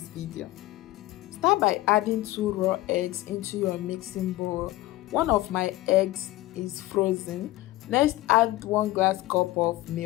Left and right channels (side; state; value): right; quieter; 17.5 dB